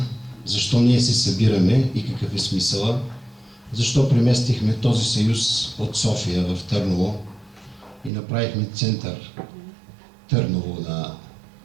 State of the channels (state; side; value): drops out; left; at 8.1 s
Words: защо ние се събираме и какъв е смисъла, защо преместихме този съюз от София в Търново и направихме център Търново на